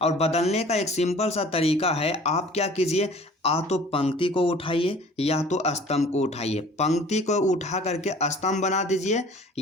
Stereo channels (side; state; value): both; normal; correlation 0.48